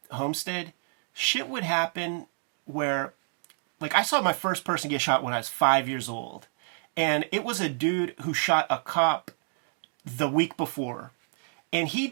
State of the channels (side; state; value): left; silent; digital silence